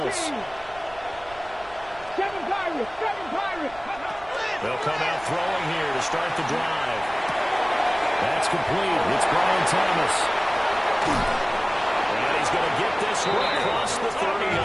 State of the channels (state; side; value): noise; right; rumble, 21 dB below the sound